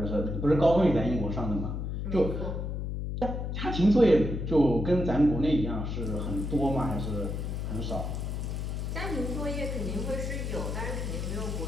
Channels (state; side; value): noise; left; hum, 3 dB below the sound